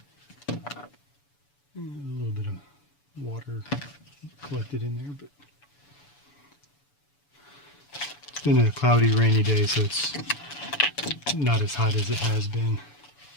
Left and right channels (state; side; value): late; right; 7.0 ms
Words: A little bit of water collected in there, but it's been a cloudy, rainy day, so it's not as hot as it has been.